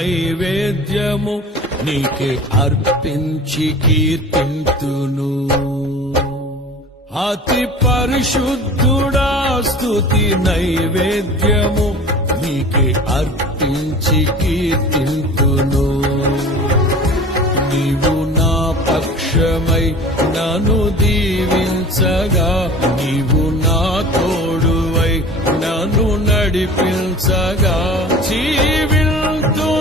నీకే అర్పించి కీర్తింతును. అతి పరిశుద్ధుడా స్తుతి నైవేద్యము నీకే అర్పించి కీర్తింతును. నీవు నా పక్షమై నన్ను దీవించగా, నీవు నా తోడువై నన్ను నడిపించగా,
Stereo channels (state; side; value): normal; both; correlation 0.40